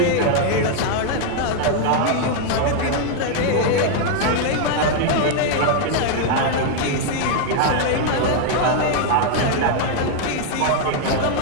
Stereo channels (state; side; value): different; both; correlation 0.00